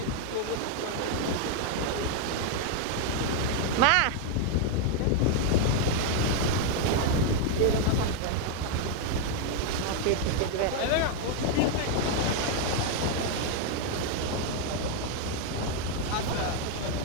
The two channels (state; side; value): different; both; correlation 0.00